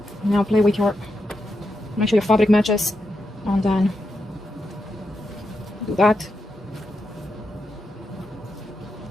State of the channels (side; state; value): both; normal; correlation 0.85